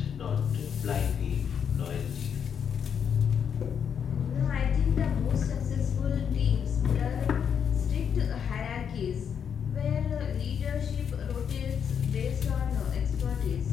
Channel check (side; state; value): right; quieter; 7.7 dB